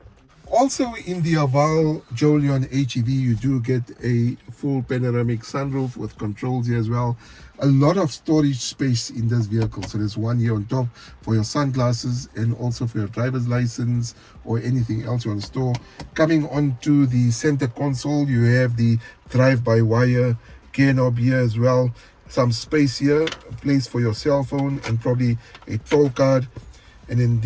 Also in the Haval Jolion HEV, you do get a full panoramic sunroof with controls here as well. A lot of storage space in this vehicle. So there's one here on top for your sunglasses and also for your driver's license or anything else you want to store. Coming onto the center console, you have the drive-by-wire gear knob here as well. Some space here, a place for your cell phone and probably a toll card. And then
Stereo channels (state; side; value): identical; both; correlation 1.00